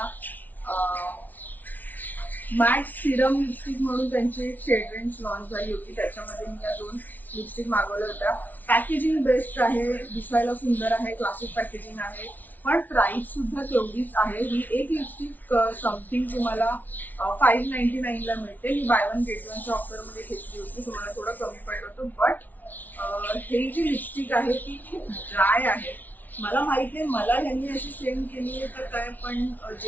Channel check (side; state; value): right; late; 0.081 ms